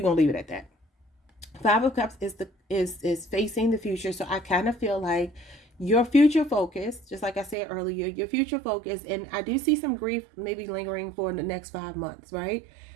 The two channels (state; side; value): drops out; left; at 7.6 s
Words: going to leave it at that. 5 of Cups is facing the future. So I kind of feel like your future focus, just like I said earlier, your future focus, and I do see some grief maybe lingering for the next 5 months, right?